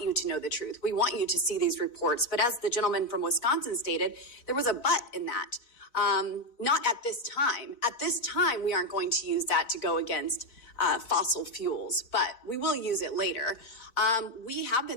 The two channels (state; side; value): late; right; 4.1 ms